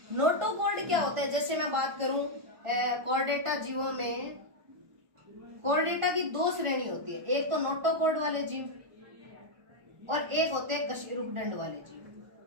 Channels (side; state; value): left; late; 1.4 ms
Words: नोटोकॉर्ड क्या होता है? जैसे मैं बात करूं कोऑर्डिनेटा जीवों में, कोऑर्डिनेटा की दो श्रेणी होती है, एक तो नोटोकॉर्ड वाले जीव और एक होते हैं कशेरुक दंड वाले जीव।